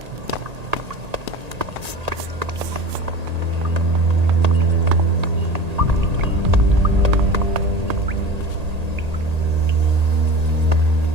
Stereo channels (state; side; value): late; left; 1.8 ms